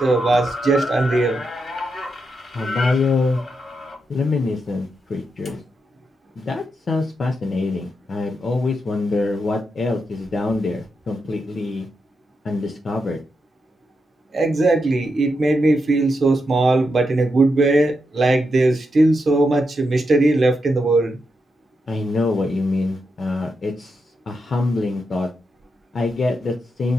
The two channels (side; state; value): both; normal; correlation 0.84